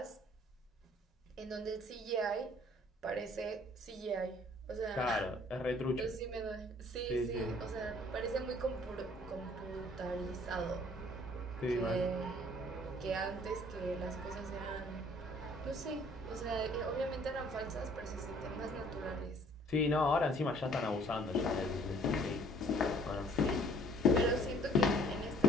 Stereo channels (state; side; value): normal; both; correlation 0.57